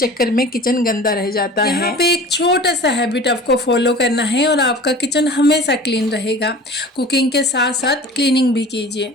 में किचन गंदा रह जाता है। यहाँ पे एक छोटा सा हैबिट आपको फॉलो करना है और आपका किचन हमेशा क्लीन रहेगा। कुकिंग के साथ साथ क्लीनिंग भी कीजिए।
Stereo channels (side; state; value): both; normal; correlation 0.40